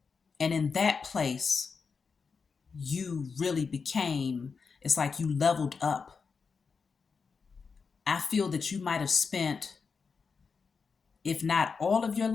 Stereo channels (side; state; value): right; quieter; 5.3 dB